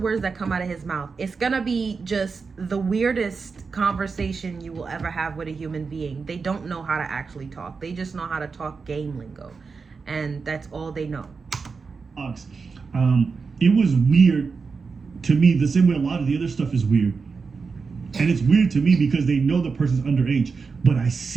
that come out of his mouth. It's gonna be just the weirdest conversation you will ever have with a human being. They don't know how to actually talk. They just know how to talk game lingo, and that's all they know. It was weird to me the same way a lot of the other stuff is weird. And it's weird to me because they know the person's underage, but I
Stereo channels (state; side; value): quieter; left; 4.9 dB